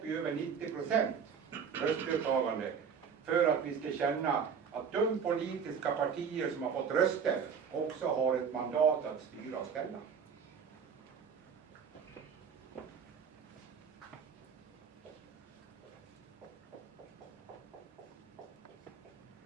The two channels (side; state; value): left; quieter; 6.7 dB